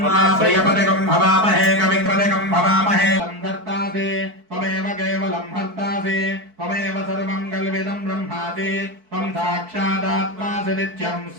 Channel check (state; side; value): late; left; 4.6 ms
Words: प्रियपतिकं भवामहे कविपतिकं भवामहे। संधर्तासे त्वमेव केवलं हर्तासे त्वमेव सर्वं कल्विदं ब्रह्मासि त्वं साक्षादात्मासि नित्यं